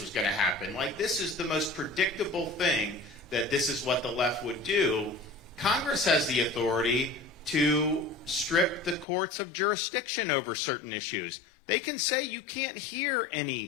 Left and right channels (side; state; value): right; drops out; at 9.1 s